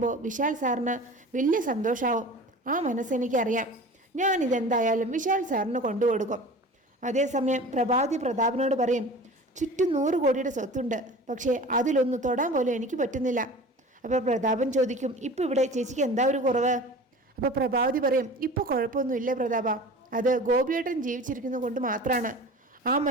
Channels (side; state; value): both; normal; correlation 0.39